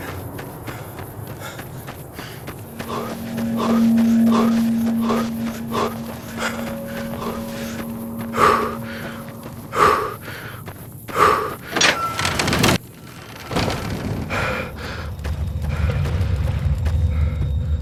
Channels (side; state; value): both; identical; correlation 1.00